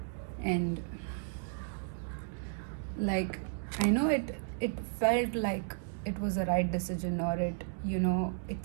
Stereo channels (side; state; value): left; silent; digital silence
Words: And like, I know it felt like it was a right decision, or it